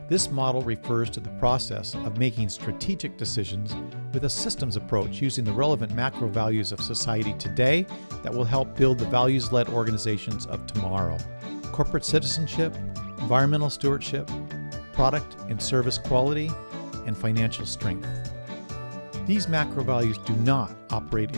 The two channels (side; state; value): both; inverted; correlation -1.00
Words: This model refers to the process of making strategic decisions with a systems approach using the relevant macro values of society today that will help build the values-led organizations of tomorrow. Corporate citizenship, environmental stewardship, product and service quality, and financial strength. These macro values do not operate